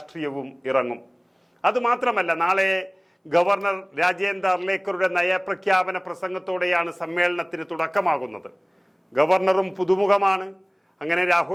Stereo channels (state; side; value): identical; both; correlation 1.00